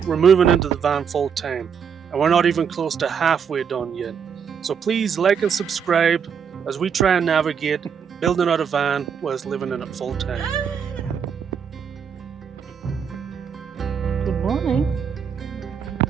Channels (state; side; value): quieter; left; 7.1 dB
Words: we're moving into the van full time, and we're not even close to halfway done yet. So please like and subscribe as we try and navigate building out a van whilst living in it full time. Good morning.